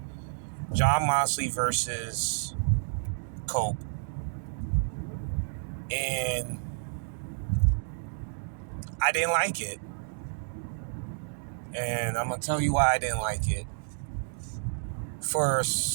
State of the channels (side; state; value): left; silent; digital silence